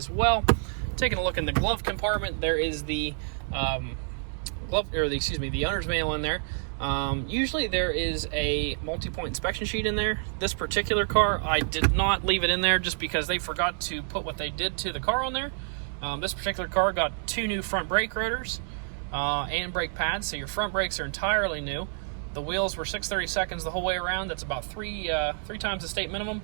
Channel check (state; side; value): silent; left; digital silence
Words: well. Taking a look in the glove compartment, there is the the owner's manual in there. Usually there is a multi-point inspection sheet in there. This particular car, I did not leave it in there just because they forgot to put what they did to the car on there. This particular car got 2 new front brake rotors and brake pads, so your front brakes are entirely new. The wheels were 6/32 the whole way around. That's about three times the state minimum.